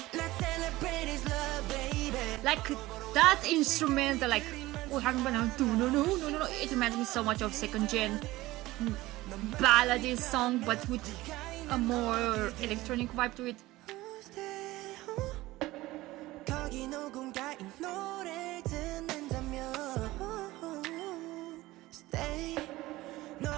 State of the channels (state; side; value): quieter; left; 18.2 dB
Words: Let's celebrate this love, baby. Like, that instrumental, like, oh, no, it reminds me so much of second gen ballady song, but with a more electronic vibe to it. 거기 누군가의 노래를 듣는다면 Stay